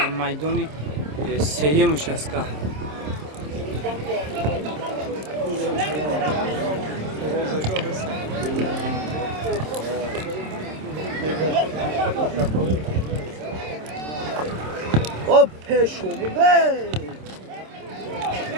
میدان سیمش است که او پیشو بده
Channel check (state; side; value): late; left; 26 ms